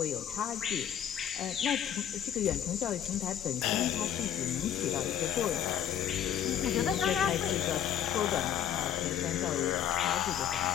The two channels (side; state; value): right; quieter; 9.8 dB